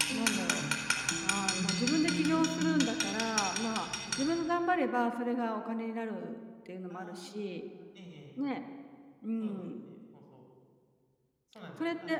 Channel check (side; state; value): both; identical; correlation 1.00